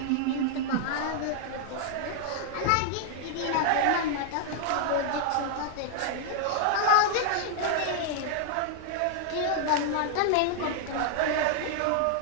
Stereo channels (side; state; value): both; different; correlation 0.00